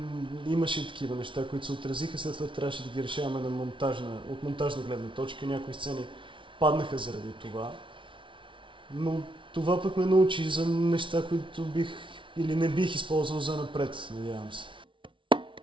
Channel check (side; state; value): left; late; 0.25 ms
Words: имаше и такива неща, които се отразиха, след това трябваше да ги решаваме от монтажна гледна точка. Някои сцени паднаха заради това. Но това пък ме научи за неща, които бих или не бих използвал за напред, надявам се.